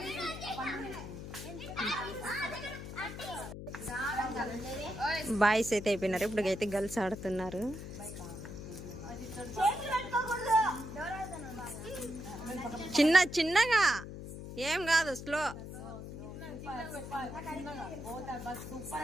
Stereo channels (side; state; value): left; noise; hum, 10 dB below the sound